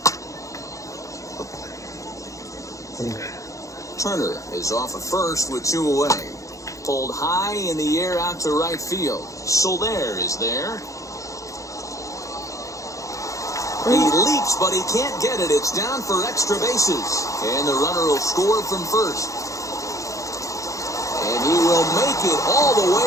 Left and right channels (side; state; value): right; late; 0.16 ms